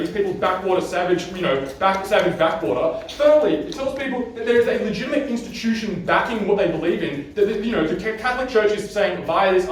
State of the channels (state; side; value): identical; both; correlation 1.00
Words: people's backwater savage, savage backwater. Thirdly, it tells people that there is a legitimate institution backing what they believe in. That the Catholic Church is saying via this